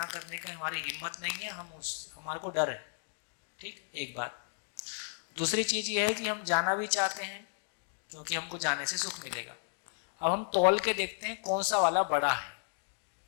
करने की हमारी हिम्मत नहीं है, हमारे को डर है। ठीक, एक बात। दूसरी चीज ये है कि हम जाना भी चाहते हैं क्योंकि हमको जाने से सुख मिलेगा। अब हम तौल के देखते हैं कौन सा वाला बड़ा है।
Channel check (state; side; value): silent; right; digital silence